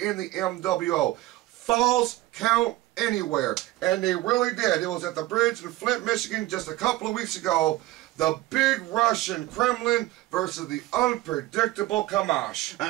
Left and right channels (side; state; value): left; quieter; 17.0 dB